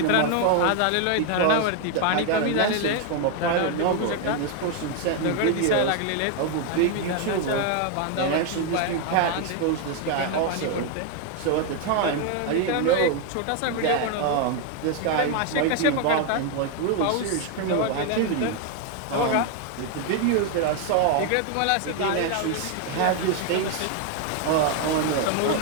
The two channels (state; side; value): different; both; correlation 0.01